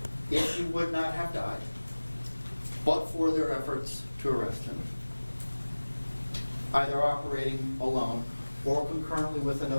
if he would not have died, but for their efforts to arrest him, either operating alone or concurrently with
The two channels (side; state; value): both; inverted; correlation -1.00